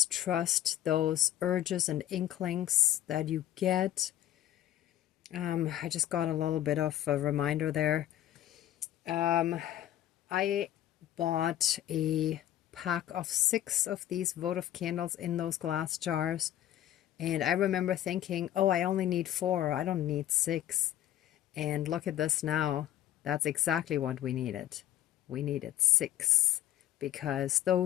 trust those urges and inklings that you get. I just got a little bit of a reminder there. I bought a pack of 6 of these votive candles in those glass jars. And I remember thinking, oh, I only need 4. I don't need 6. And look at this now. That's exactly what we needed. We needed 6 because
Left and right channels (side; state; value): right; quieter; 12.5 dB